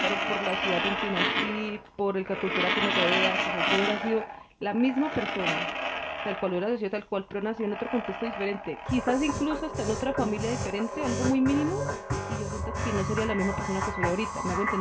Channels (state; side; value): identical; both; correlation 1.00